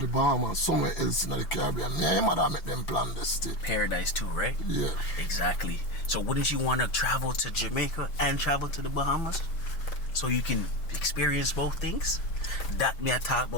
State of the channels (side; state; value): right; late; 6.0 ms